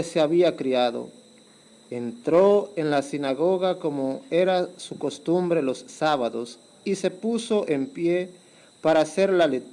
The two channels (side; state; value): both; identical; correlation 1.00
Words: se había criado. Entró en la sinagoga como era su costumbre los sábados, y se puso en pie para hacer la